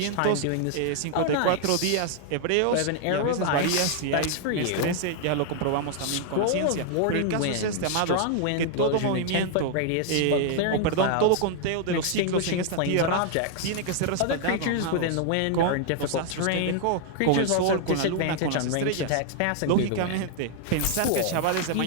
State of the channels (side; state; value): both; different; correlation 0.00